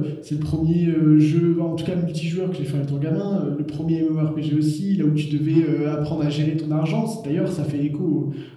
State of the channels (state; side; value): identical; both; correlation 1.00